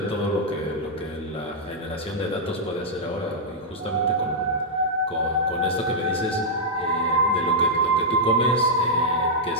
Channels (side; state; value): both; normal; correlation -0.08